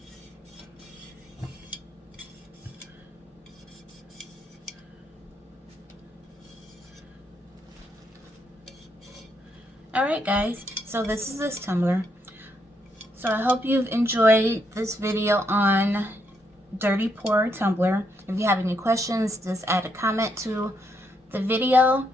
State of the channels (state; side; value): normal; both; correlation 0.76